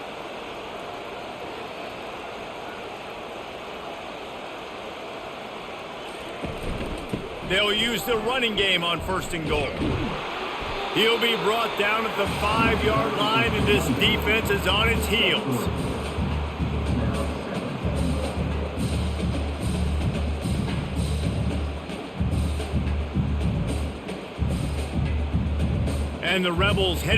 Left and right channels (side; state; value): both; identical; correlation 1.00